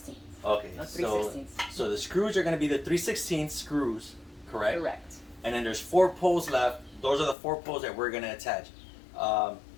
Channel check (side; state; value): right; drops out; at 7.4 s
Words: okay. No, So 3/16. so the screws are going to be the 3/16 screws, correct? Correct. And then there's 4 poles left. Those are the 4 poles that we're going to attach.